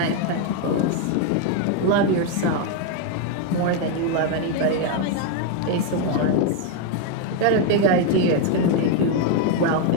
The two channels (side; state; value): both; different; correlation 0.01